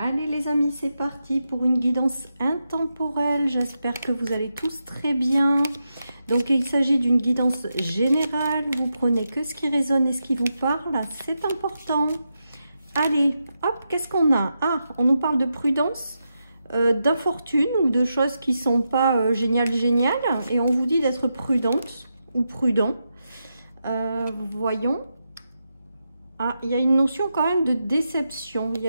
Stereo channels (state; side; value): inverted; both; correlation -0.86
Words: les amis, c'est parti pour une guidance intemporelle. J'espère que vous allez tous très bien. Donc il s'agit d'une guidance générale. Vous prenez que ce qui résonne et ce qui vous parle. C'est important. Allez, hop, qu'est-ce qu'on a? Ah, on nous parle de prudence, d'infortune ou de choses qui sont pas géniales. Et on vous dit d'être prudente ou prudent. Voyons. Ah, il y a une notion quand même de déception, il y